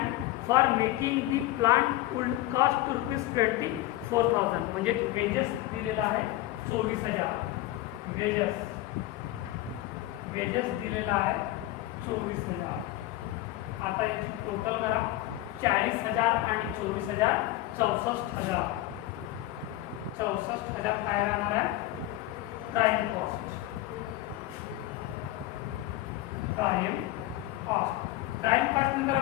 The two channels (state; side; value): quieter; right; 15.8 dB